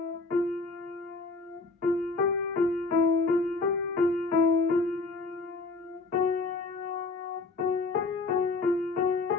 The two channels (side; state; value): right; quieter; 3.7 dB